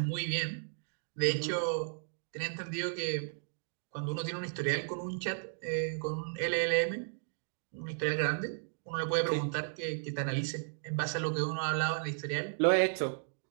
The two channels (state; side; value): silent; left; digital silence